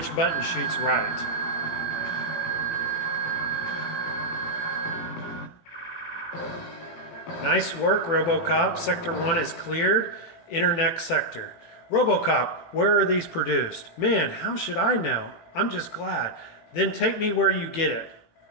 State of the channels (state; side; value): late; right; 18 ms